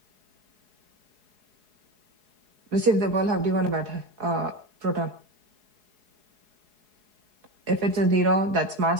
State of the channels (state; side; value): late; left; 4.7 ms